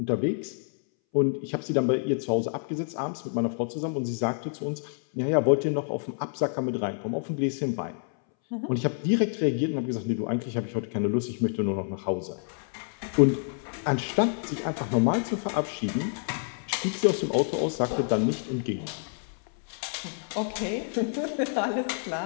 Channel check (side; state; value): right; silent; 59 dB below the other